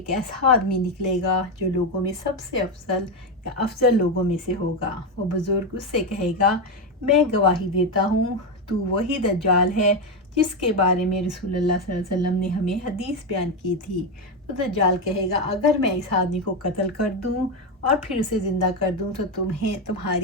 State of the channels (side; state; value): both; normal; correlation 0.10